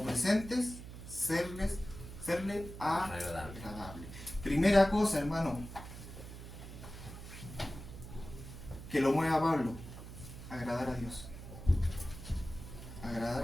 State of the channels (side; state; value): right; noise; hum, 12 dB below the sound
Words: presentes, serle agradable. Primera cosa, hermano, que lo mueve a Pablo, agradar a Dios. Agradar